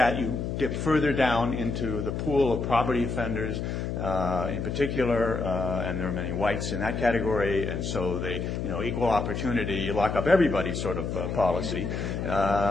you dip further down into the pool of poverty offenders in particular, and there are many whites in that category, and so they, equal opportunity, you lock up everybody sort of policy.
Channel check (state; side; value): noise; left; hum, 3 dB below the sound